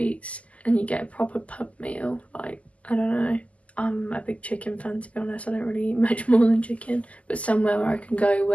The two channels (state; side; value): late; right; 0.067 ms